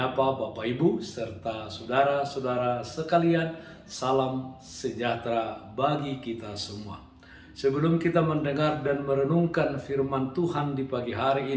Bapak Ibu serta saudara-saudara sekalian, salam sejahtera bagi kita semua. Sebelum kita mendengar dan merenungkan firman Tuhan di pagi hari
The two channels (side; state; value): both; identical; correlation 1.00